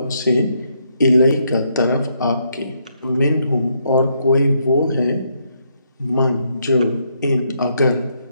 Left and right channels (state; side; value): inverted; both; correlation -0.75